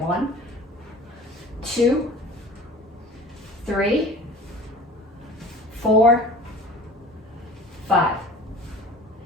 2, 3, 4, 5.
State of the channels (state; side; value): normal; both; correlation 0.42